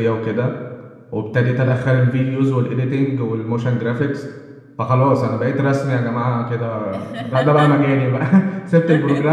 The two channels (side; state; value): both; identical; correlation 1.00